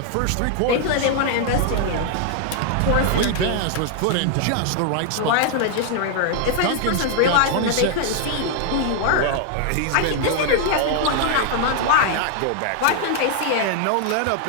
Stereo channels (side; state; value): both; different; correlation 0.00